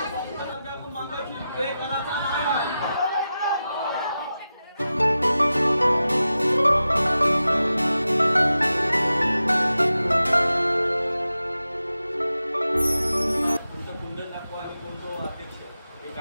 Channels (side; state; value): both; inverted; correlation -0.92